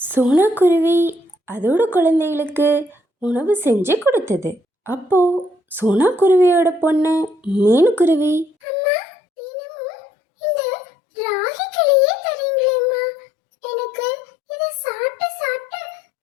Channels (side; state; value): right; drops out; at 8.5 s